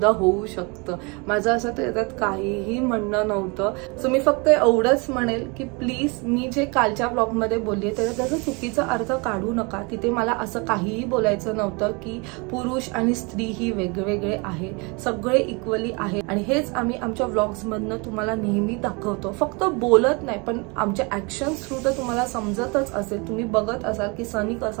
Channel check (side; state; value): left; quieter; 29.9 dB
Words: होऊ शकतं. माझं असं त्याच्यात काहीही म्हणणं नव्हतं. सो मी फक्त एवढंच म्हणेल की प्लीज, मी जे कालच्या ब्लॉगमध्ये बोलली त्याचा चुकीचा अर्थ काढू नका. तिथे मला असं काहीही बोलायचं नव्हतं की पुरुष आणि स्त्री ही वेगवेगळे आहे, सगळे इक्वली आहे. आणि हेच आम्ही आमच्या व्लॉग्स मधनं तुम्हाला नेहमी दाखवतो, फक्त बोलत नाही, पण आमच्या ऍक्शन थ्रू तर तुम्हाला समजतच असेल, तुम्ही बघत असाल की सनी